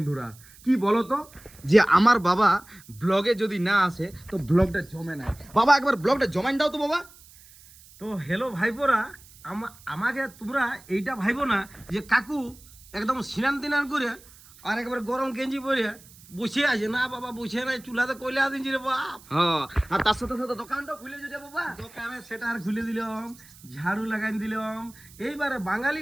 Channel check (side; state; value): right; noise; hiss, 23 dB below the sound